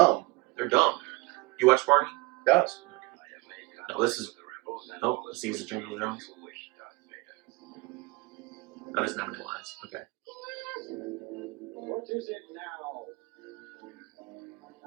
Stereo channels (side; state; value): left; quieter; 23.5 dB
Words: They're dumb. You watch Barney? Yes. No, this is. Oh, this is the Jingle Jones. That is not any lines. Okay. What is it now?